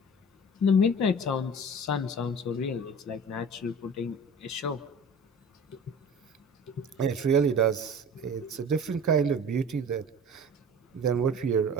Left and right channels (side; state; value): both; normal; correlation 0.40